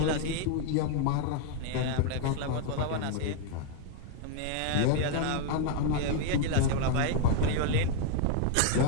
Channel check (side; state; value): both; different; correlation 0.00